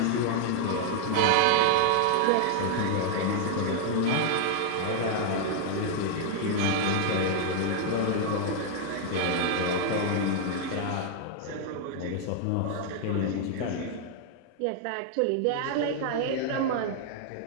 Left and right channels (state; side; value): different; both; correlation 0.00